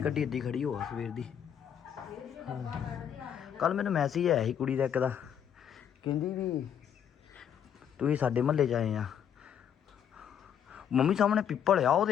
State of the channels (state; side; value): quieter; right; 8.8 dB